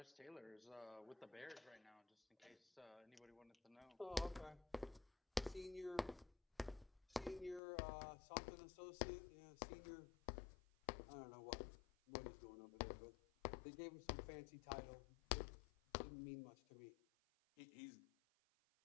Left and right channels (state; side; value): drops out; right; at 7.6 s